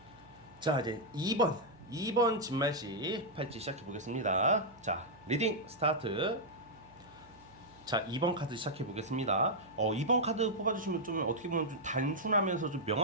자, 이제 2번 진말씨 팔찌 시작해 보겠습니다. 자, 리딩 스타트. 자, 2번 카드 시작해 보겠습니다. 2번 카드 뽑아주시면 좀 어떻게 보면 좀 단순하면서 좀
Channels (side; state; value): right; noise; hum, 26 dB below the sound